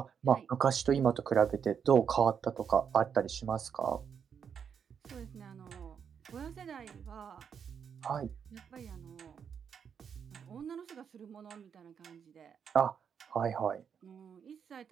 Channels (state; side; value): quieter; left; 7.3 dB